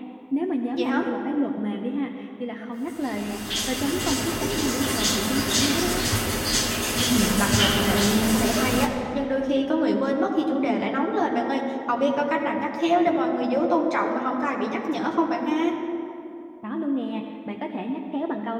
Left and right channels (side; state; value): both; identical; correlation 1.00